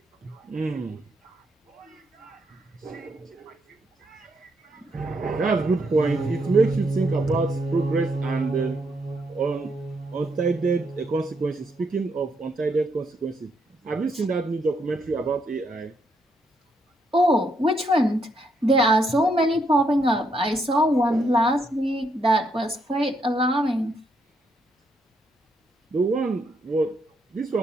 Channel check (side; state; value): both; normal; correlation 0.76